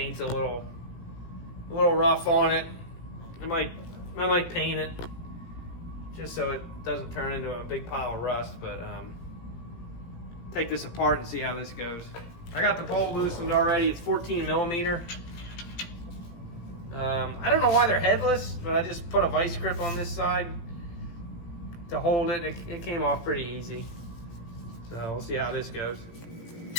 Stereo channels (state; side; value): late; right; 17 ms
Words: a little rough on it. I might paint it just so it doesn't turn into a big pile of rust. But take this apart and see how this goes. I got the bolt loosened already. It's 14 millimeter. I don't know why they're headless, but I just put a vice grip on this side to hold it. It came off pretty easy. So we'll see how this goes.